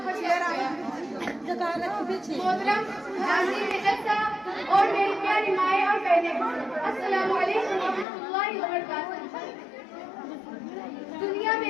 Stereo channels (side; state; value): right; drops out; at 8.1 s